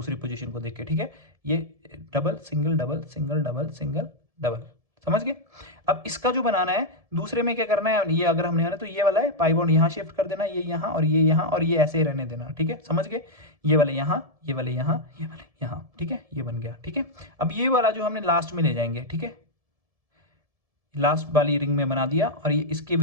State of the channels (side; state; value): left; late; 1.7 ms